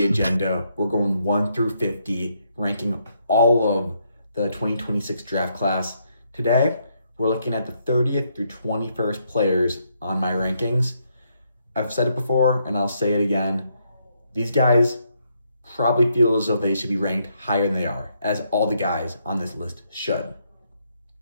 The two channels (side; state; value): both; inverted; correlation -0.75